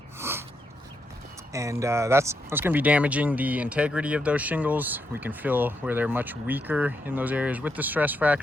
and that's going to be damaging the integrity of those shingles. We can feel where they're much weaker in those areas with the stress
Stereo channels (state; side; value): normal; both; correlation 0.81